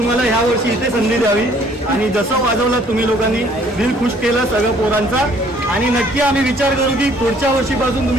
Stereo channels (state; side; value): normal; both; correlation 0.60